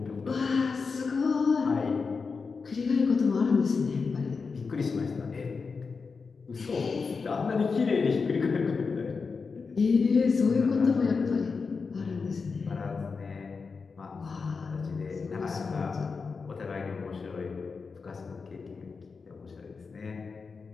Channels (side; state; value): right; quieter; 4.9 dB